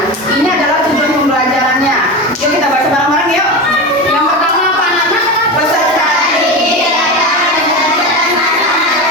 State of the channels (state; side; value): normal; both; correlation 0.22